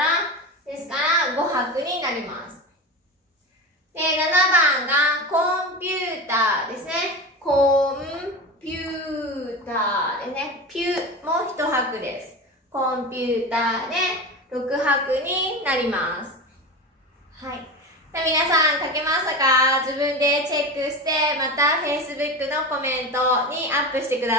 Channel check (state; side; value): normal; both; correlation 0.25